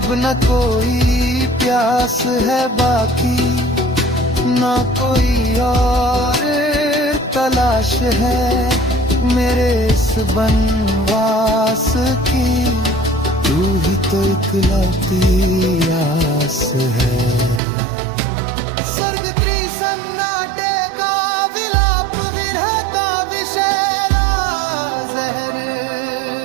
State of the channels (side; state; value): left; drops out; at 17.6 s